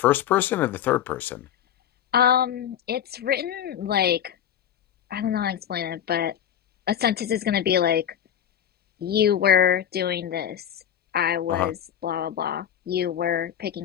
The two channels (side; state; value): right; quieter; 10.0 dB